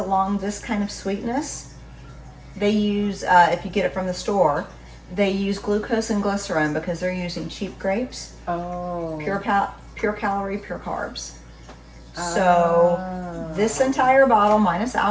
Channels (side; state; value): both; identical; correlation 1.00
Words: this kind of sweetness, they use, if you get it from the store, they use glucose and glycerin because they're using cheap grapes. Oh. Pure calorie, pure carbs. So this entire bottle minus